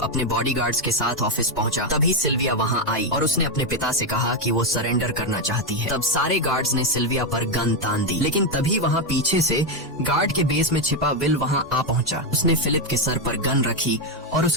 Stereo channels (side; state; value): right; noise; hum, 27 dB below the sound